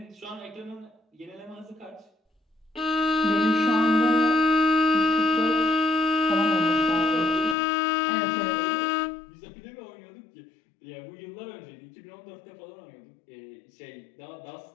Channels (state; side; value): drops out; right; at 7.6 s